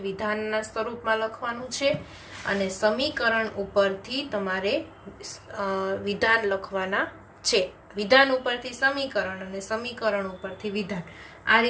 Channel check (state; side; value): identical; both; correlation 1.00